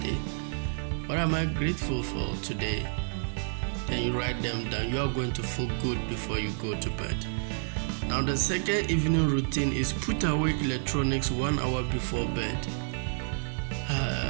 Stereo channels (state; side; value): silent; left; digital silence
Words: day. What am I grateful for today? Then you write them down. You are going to feel good before you go to bed. Now the second evening routine is put away electronics 1 hour before bed.